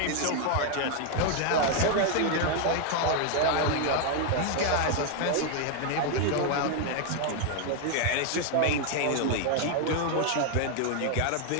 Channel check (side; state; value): both; different; correlation 0.00